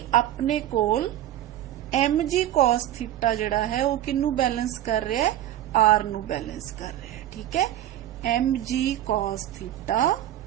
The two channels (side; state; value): left; quieter; 12.7 dB